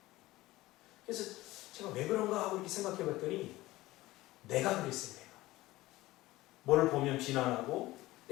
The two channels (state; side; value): quieter; right; 18.0 dB